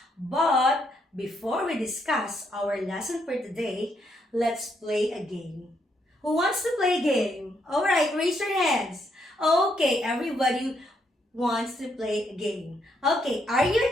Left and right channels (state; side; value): normal; both; correlation 0.75